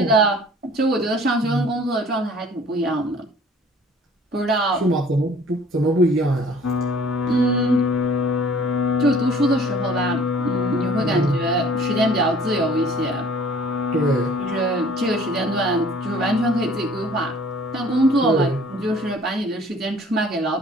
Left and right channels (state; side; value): normal; both; correlation 0.51